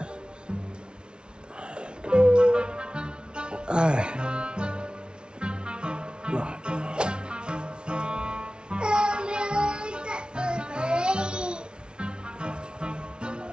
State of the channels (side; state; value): left; late; 0.055 ms